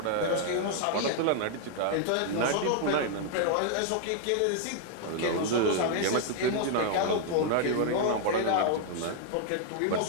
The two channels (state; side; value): different; both; correlation 0.00